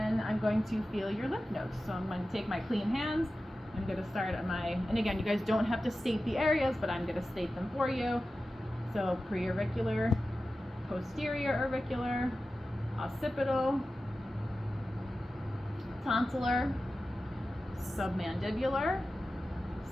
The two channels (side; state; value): both; normal; correlation 0.94